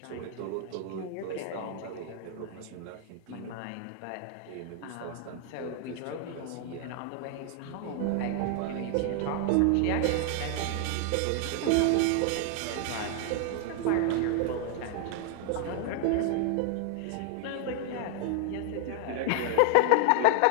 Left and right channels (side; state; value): both; different; correlation 0.00